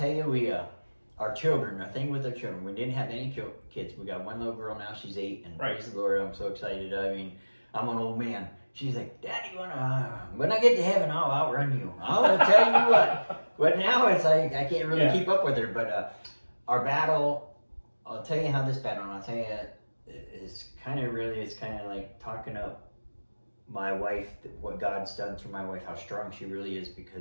you, our children, the thing with our children, we didn't have any kids. We got one little girl now, she's 8, and praise the Lord, I'm so excited. I mean, I'm an old man. She's like, Daddy, when I get to heaven, I'll outrun you. I'll tell you what. But now it's like, I can't really keep up with her. But our battle, I'll tell you how this battle, and I'll tell you, it's kind of like talking up my wife, what God's done through my wife, how strong she really is,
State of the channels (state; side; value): inverted; both; correlation -1.00